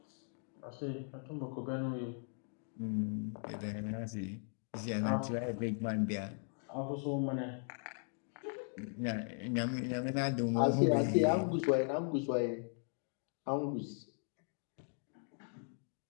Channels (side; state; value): right; silent; 52 dB below the other